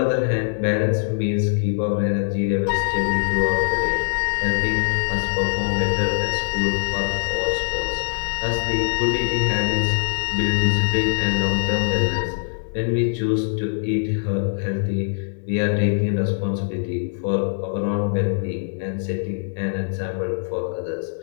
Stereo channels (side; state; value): right; silent; 64 dB below the other